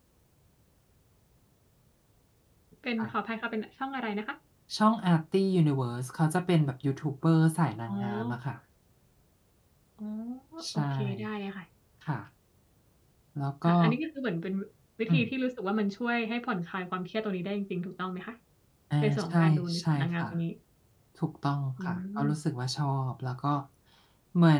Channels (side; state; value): both; identical; correlation 1.00